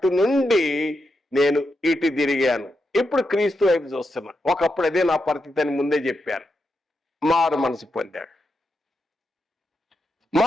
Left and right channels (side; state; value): both; normal; correlation 0.85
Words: నుండి నేను ఇటు తిరిగాను. ఇప్పుడు క్రీస్తు వైపు చూస్తున్నా. ఒకప్పుడు అదే నా పరిస్థితి అని ముందే చెప్పారు. మారు మనసు పొందాడు.